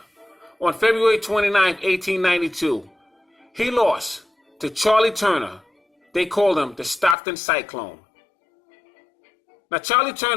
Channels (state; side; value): drops out; right; at 7.2 s